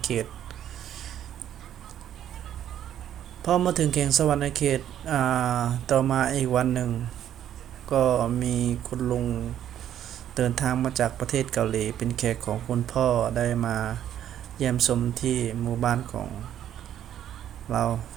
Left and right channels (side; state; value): left; quieter; 10.7 dB